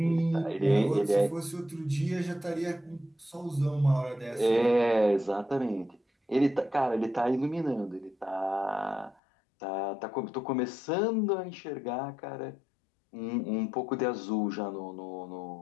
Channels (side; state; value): right; drops out; at 9.2 s